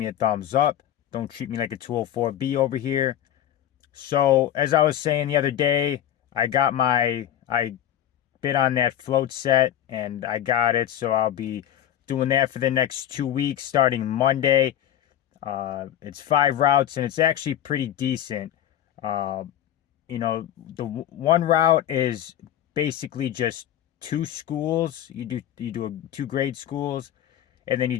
a thumbs up. Don't treat me like a 204B over here. So, as I was saying the other day, I bid on that float set and I got it. So I'll be doing that for the next 2 weeks starting Monday. It's 5 routes and it's actually pretty decent. Uh, the one route is basically just two schools. You do two grade schools, and then you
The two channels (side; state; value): right; quieter; 11.1 dB